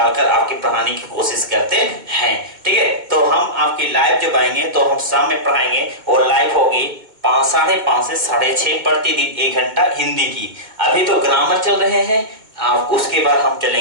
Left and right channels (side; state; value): left; late; 2.1 ms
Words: कर आपके पढ़ाने की कोशिश करते हैं। ठीक है, तो हम आपकी लाइव जब आएंगे तो हम शाम में पढ़ाएंगे और लाइव होगी 5:30 से 6:30 प्रतिदिन 1 घंटा हिंदी की। अभी तो ग्रामर चल रहे हैं, आप उसके बाद हम